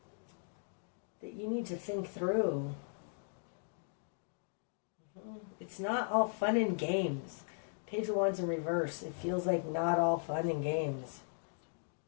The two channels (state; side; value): silent; right; digital silence